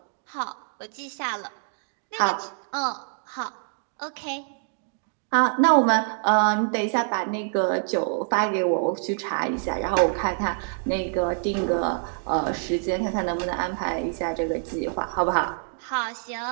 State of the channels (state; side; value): silent; left; digital silence